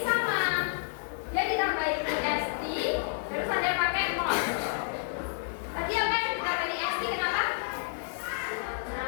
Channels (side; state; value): right; silent; digital silence